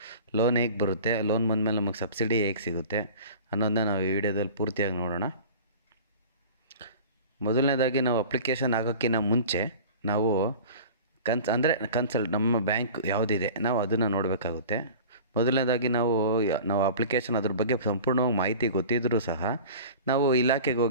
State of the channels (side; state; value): both; inverted; correlation -0.39